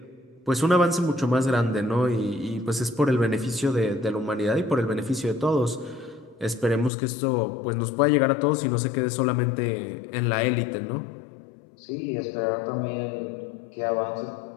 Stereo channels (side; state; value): right; drops out; at 6.9 s